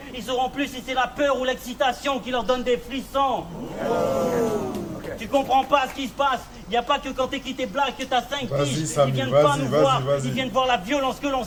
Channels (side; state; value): both; identical; correlation 1.00